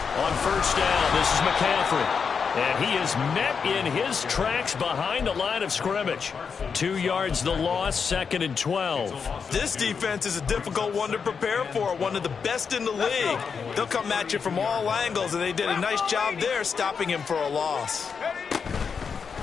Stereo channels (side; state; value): right; quieter; 6.0 dB